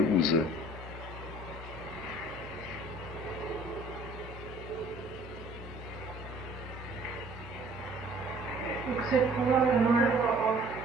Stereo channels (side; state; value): left; noise; hum, 10 dB below the sound